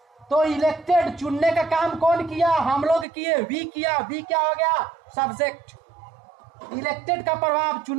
तो इलेक्टेड, चुनने का काम कौन किया, हम लोग किए, वी किया। वी क्या हो गया, सब्जेक्ट। इलेक्टेड का प्रभाव,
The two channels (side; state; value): left; drops out; at 3.1 s